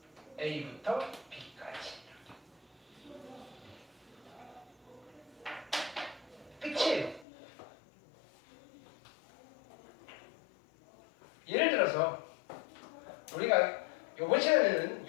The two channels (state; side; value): drops out; right; at 7.2 s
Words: a부터 b까지. 끝이에요. 예를 들어서 우리가 요번 시간에는